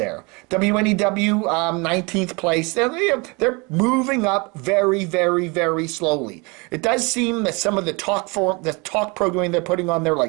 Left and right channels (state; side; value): quieter; left; 28.5 dB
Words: WNEW, 19th place. They're moving up very, very, very slowly. It does seem that some of the talk programming they're putting on there,